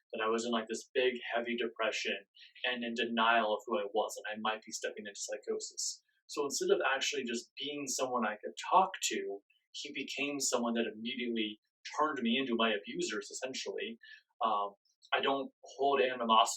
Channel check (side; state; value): both; identical; correlation 1.00